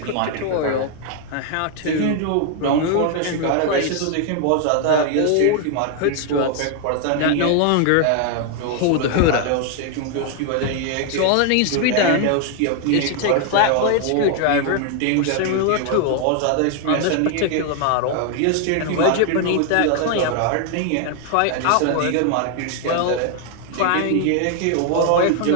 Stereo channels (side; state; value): both; different; correlation 0.00